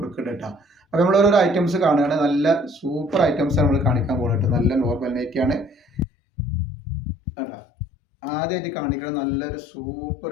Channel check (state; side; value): drops out; right; at 6.1 s